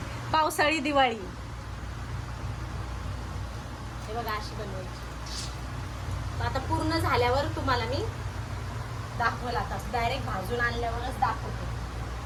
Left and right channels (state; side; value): identical; both; correlation 1.00